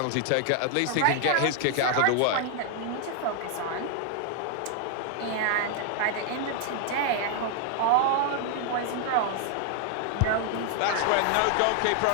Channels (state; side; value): different; both; correlation 0.00